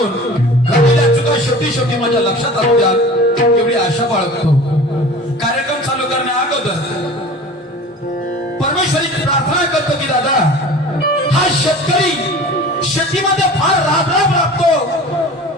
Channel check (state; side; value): normal; both; correlation 0.40